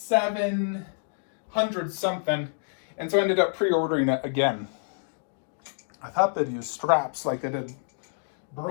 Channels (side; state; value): right; silent; digital silence